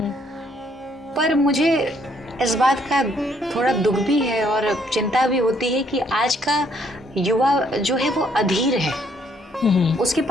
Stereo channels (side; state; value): both; normal; correlation 0.68